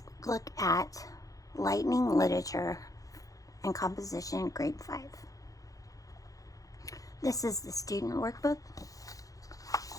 look at Lightning Literature and Composition, Grade 5. This is the student workbook.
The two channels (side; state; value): right; late; 0.17 ms